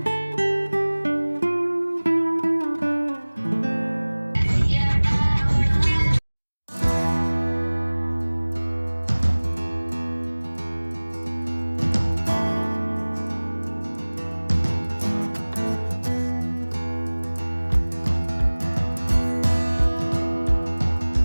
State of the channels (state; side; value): inverted; both; correlation -1.00